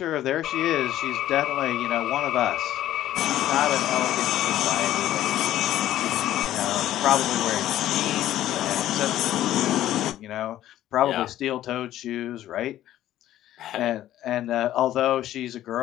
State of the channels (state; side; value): quieter; right; 13.1 dB